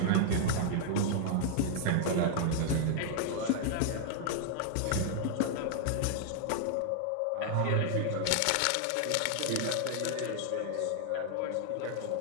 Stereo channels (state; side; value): different; both; correlation 0.00